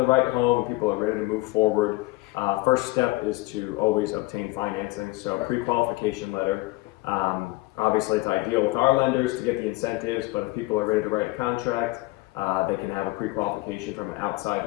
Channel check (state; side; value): quieter; right; 20.7 dB